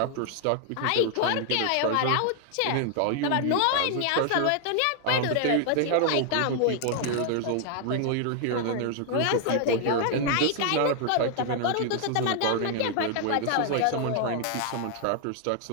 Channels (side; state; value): both; different; correlation 0.00